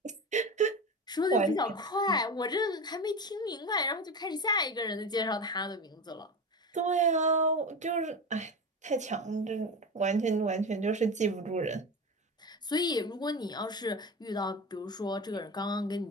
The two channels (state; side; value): normal; both; correlation 0.25